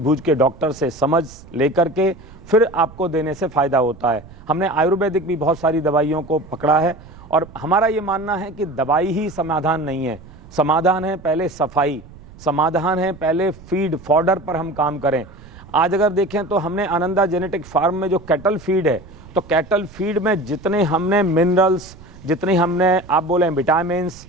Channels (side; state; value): right; noise; rumble, 20 dB below the sound